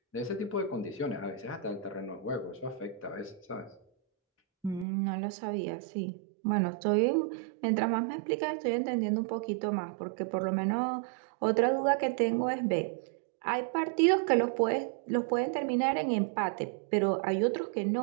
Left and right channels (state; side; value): drops out; left; at 4.9 s